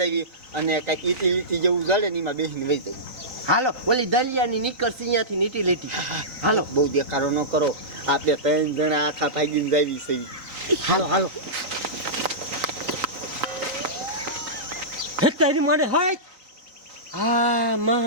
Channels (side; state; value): left; late; 3.9 ms